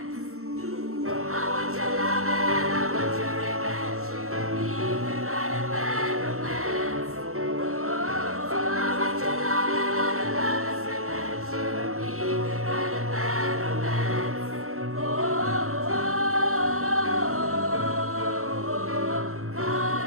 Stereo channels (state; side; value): late; left; 0.63 ms